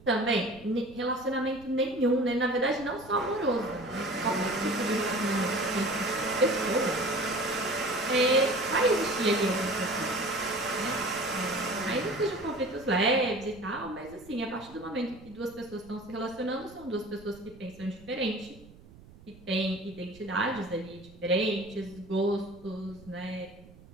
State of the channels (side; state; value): right; noise; rumble, 22 dB below the sound